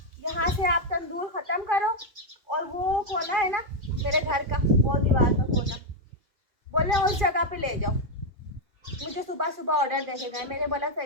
यहाँ से आप तंदूर ख़त्म करो और वो कोना है ना मेरे घर का, वो दीवार का कोना, बोले उस जगह पे ले जाओ। मुझे सुबह सुबह ऑर्डर दे के गए। मैंने बोला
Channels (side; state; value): left; late; 2.4 ms